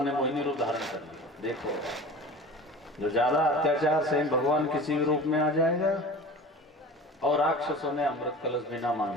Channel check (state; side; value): normal; both; correlation 0.38